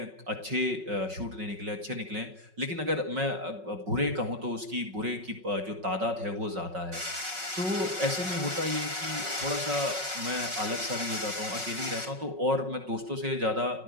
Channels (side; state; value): left; late; 5.4 ms